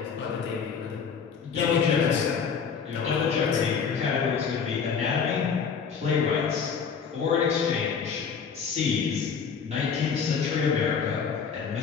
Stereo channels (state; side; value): quieter; right; 6.3 dB